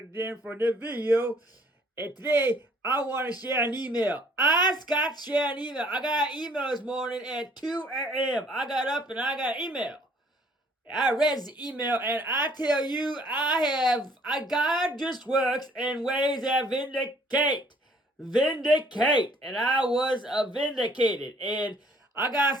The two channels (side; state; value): both; normal; correlation 0.60